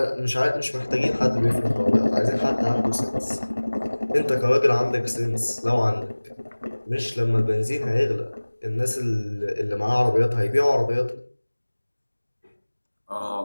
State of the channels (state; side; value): inverted; both; correlation -1.00